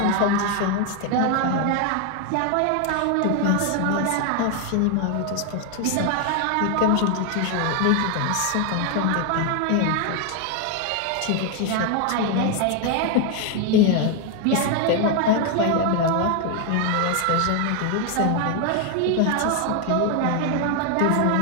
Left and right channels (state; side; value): different; both; correlation 0.01